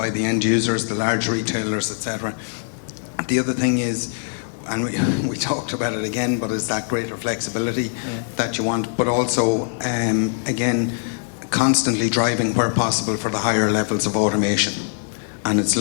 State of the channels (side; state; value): right; silent; 64 dB below the other